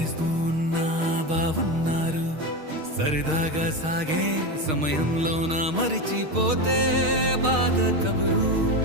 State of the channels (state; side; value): late; left; 6.4 ms